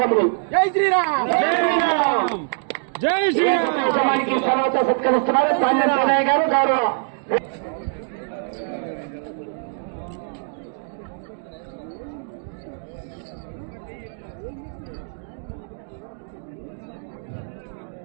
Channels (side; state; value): left; silent; digital silence